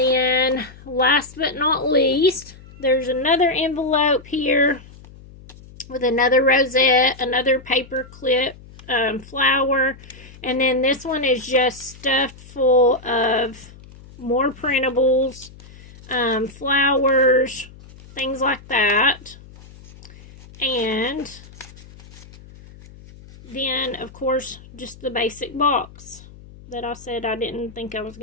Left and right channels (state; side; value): noise; left; hum, 20 dB below the sound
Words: last but not least, there's another envelope here with another rosette, another paper clip, flower. And then this one is just stuffed full of more printables, flowers, things like that. And then, of course, just the basic box that I said I didn't think I was